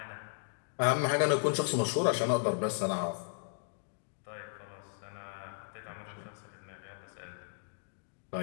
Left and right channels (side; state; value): right; silent; digital silence